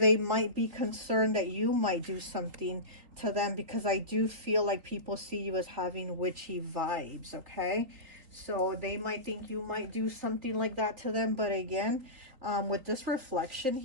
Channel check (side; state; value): left; late; 3.8 ms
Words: might be concerned that you might do something to them, because I do feel like people see you as having witchy vibes. Okay, so they might think you might do something like that to them. But again, with this reflection